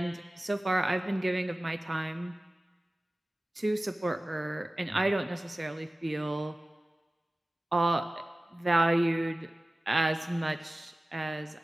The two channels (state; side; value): normal; both; correlation 0.97